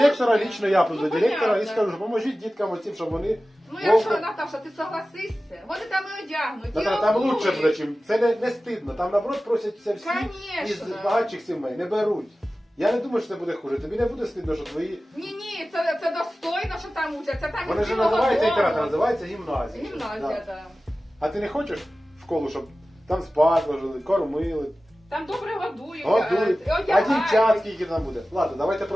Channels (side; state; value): both; normal; correlation 0.96